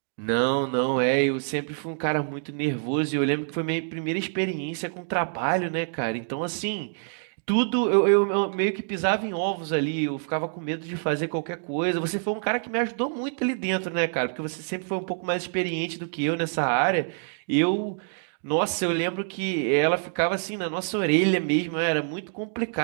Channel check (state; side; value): silent; left; digital silence